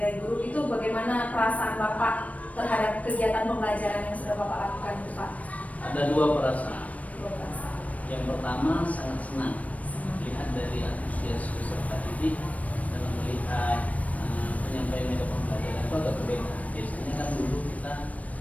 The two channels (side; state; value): right; late; 0.068 ms